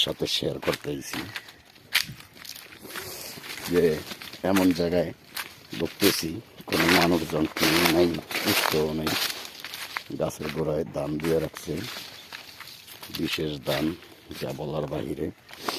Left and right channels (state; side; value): identical; both; correlation 1.00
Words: সাথে শেয়ার করতেছি যে এমন জায়গায় ঢুকতেছি, কোনো মানুষজন নেই, উৎসও নেই। গাছের গোড়ায় দান দিয়ে রাখছে, বিশেষ দান, যা বলার বাহিরে।